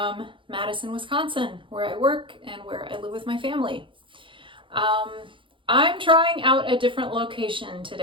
Madison, Wisconsin, where I work and where I live with my family. I'm trying out a different location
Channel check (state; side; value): late; left; 0.25 ms